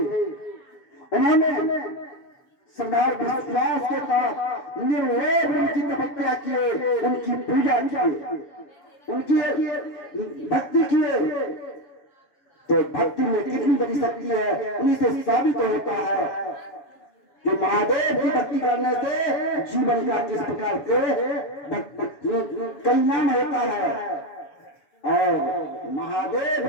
उन्होंने श्रद्धा विश्वास के साथ निर्लोभ उनकी तपस्या किए, उनकी पूजा किए, उनकी भक्ति किए। तो भक्ति में कितनी बड़ी शक्ति है, उन्हीं से साबित होता है कि महादेव की भक्ति करने से जीवन का किस प्रकार से कल्याण होता है। और महादेव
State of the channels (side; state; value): right; late; 7.1 ms